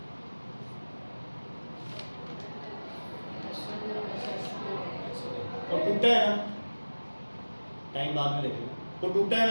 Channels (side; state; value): both; inverted; correlation -1.00